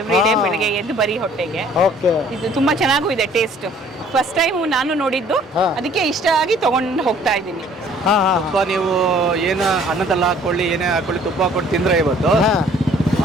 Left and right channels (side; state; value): both; normal; correlation 0.56